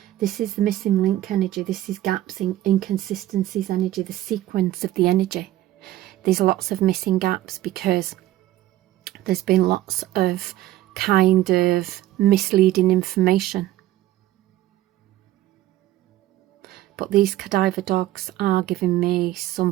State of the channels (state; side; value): quieter; left; 14.8 dB